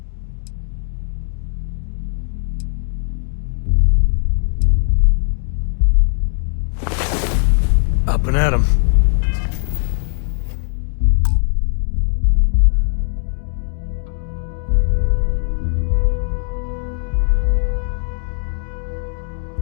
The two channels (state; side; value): silent; right; digital silence